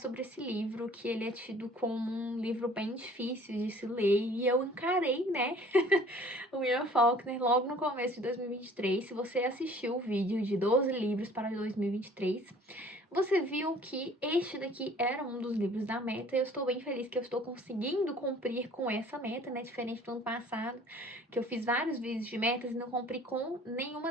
esse livro, que ele é tido como um livro bem difícil de se ler, e eu encarei, né, o William Faulkner logo no começo de 2023. Se você assistiu o vídeo de 12 livros para 2023, você viu que este daqui era um dos livros da meta, e eu estou bem feliz que eu estou conseguindo cumprir com essa meta, né? Diferente do ano passado, que eu fiz vários vídeos de metas e não cumpri com nenhuma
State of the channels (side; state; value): both; normal; correlation 0.52